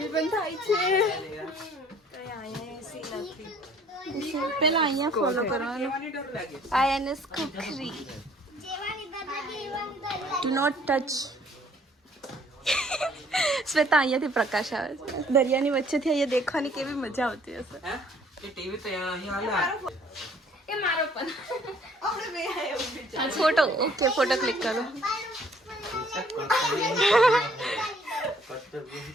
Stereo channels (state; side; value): normal; both; correlation 0.59